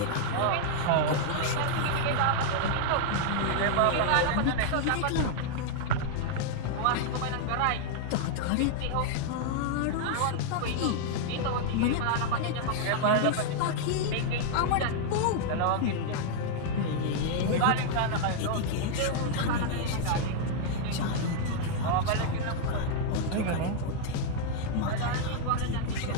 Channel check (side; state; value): both; different; correlation -0.01